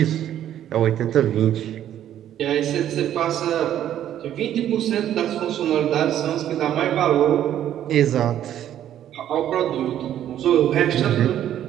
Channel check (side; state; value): left; quieter; 11.1 dB